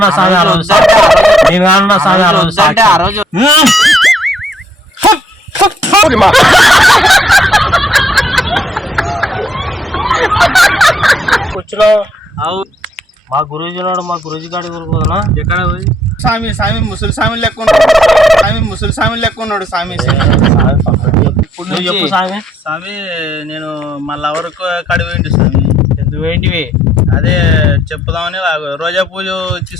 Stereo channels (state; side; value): normal; both; correlation 0.69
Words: స్వామి ఆ రోజు నేను అన్నా స్వామి ఆ రోజు అంటే ఆ రోజు కూర్చున్నావు మా గురూజీ ఉన్నాడు, మా గురూజీ గాడి ఊరుకోదనా ఎక్కడ పోయి స్వామి స్వామి ముసలి స్వామి లెక్క ఉన్నాడు స్వామి, ముసలి స్వామి లెక్క ఉన్నాడు స్వామి. ఇప్పుడు నువ్వు చెప్పు స్వామి. స్వామి నేను మా లవర్ కాడి పోయింటి స్వామి. ఎందుకు ఏంటివి? అదే చెప్పుదామని రోజా పూజ